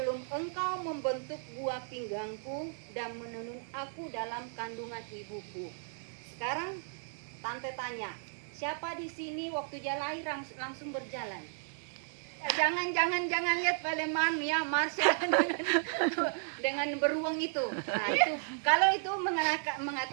engkau membentuk buah pinggangku dan menenun aku dalam kandungan ibuku. Sekarang tante tanya, siapa di sini waktu dia lahir langsung berjalan? Jangan lihat Paleman ya, Marsha dengan beruang itu. Nah, itu kalau itu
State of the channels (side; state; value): left; silent; digital silence